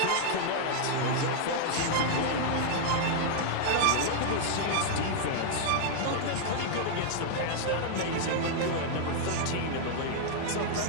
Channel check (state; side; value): different; both; correlation 0.00